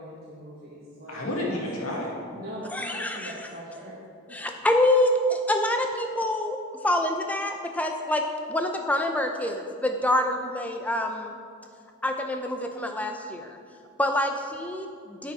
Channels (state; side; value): normal; both; correlation 0.46